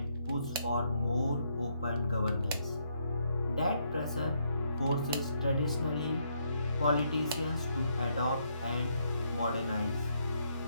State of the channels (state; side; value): inverted; both; correlation -0.74